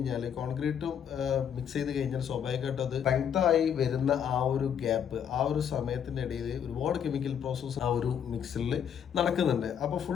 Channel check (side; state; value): right; quieter; 8.4 dB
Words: കോൺക്രീറ്റും മിക്സ് ചെയ്ത് കഴിഞ്ഞാൽ സ്വാഭാവികമായിട്ടും അത് സ്ട്രെങ്ത് ആയി വരുന്ന ആ ഒരു ഗ്യാപ്പ്, ആ ഒരു സമയത്തിന്റെ ഇടയിൽ ഒരുപാട് കെമിക്കൽ പ്രോസസ്സ് ആ ഒരു മിക്സിൽ നടക്കുന്നുണ്ട്. അപ്പോൾ